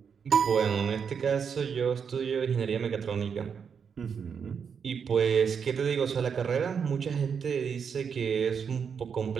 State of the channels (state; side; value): quieter; left; 6.7 dB